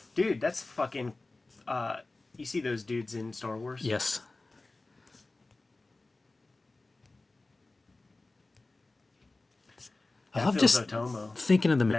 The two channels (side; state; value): right; quieter; 3.2 dB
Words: Dude, that's fucking... you see those dudes in Star Wars? Yes. I love just Otomo. thinking of the